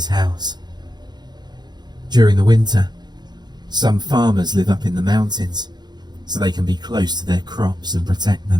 house. During the winter, some farmers live up in the mountains so they can be close to their crops and protect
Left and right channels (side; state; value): left; late; 0.21 ms